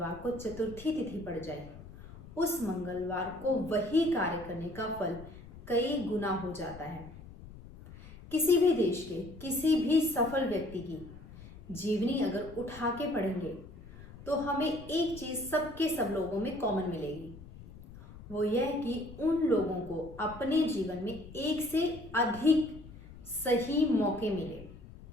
को चतुर्थी तिथि पड़ जाए उस मंगलवार को वही कार्य करने का फल कई गुना हो जाता है। किसी भी देश के किसी भी सफल व्यक्ति की जीवनी अगर उठा के पढ़ेंगे तो हमें एक चीज सबके सब लोगों में कॉमन मिलेगी। वो यह कि उन लोगों को अपने जीवन में एक से अधिक सही मौके मिले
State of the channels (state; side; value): noise; left; rumble, 17 dB below the sound